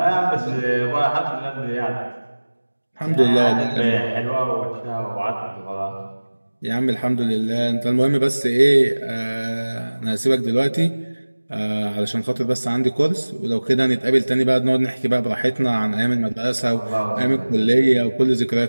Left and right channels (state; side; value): inverted; both; correlation -1.00